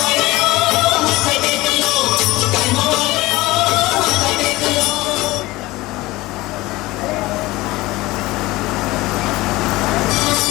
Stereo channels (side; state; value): right; quieter; 19.7 dB